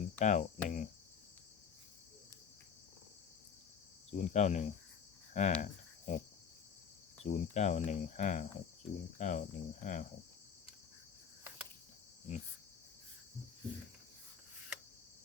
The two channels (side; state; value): right; quieter; 7.2 dB